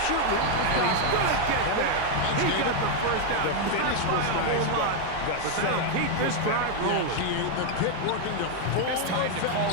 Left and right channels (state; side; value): different; both; correlation 0.01